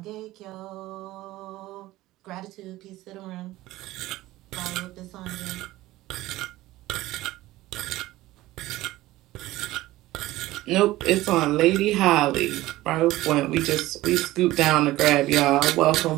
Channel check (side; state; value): left; quieter; 17.1 dB